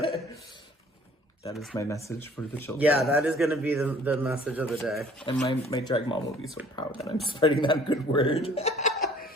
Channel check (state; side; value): normal; both; correlation 0.54